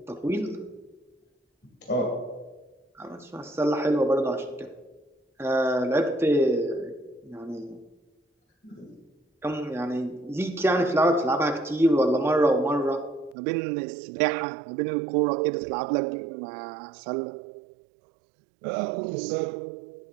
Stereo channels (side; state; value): left; drops out; at 13.4 s